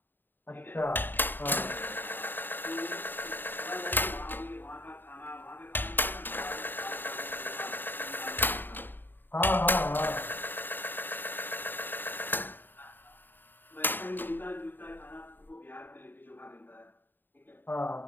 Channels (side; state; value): right; late; 0.093 ms